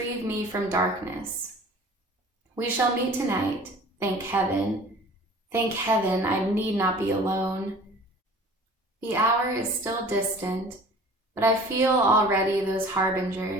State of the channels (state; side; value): normal; both; correlation 0.45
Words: me from darkness. We shall meet tonight, thank heaven. Thank heaven I need not be alone. The hour is still distant, but I feel already those